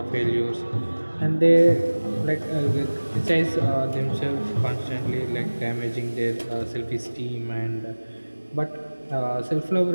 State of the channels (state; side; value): inverted; both; correlation -1.00